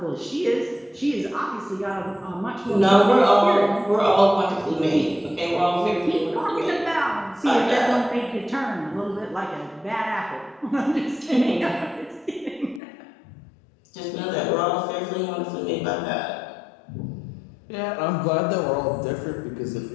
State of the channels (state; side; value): drops out; right; at 12.8 s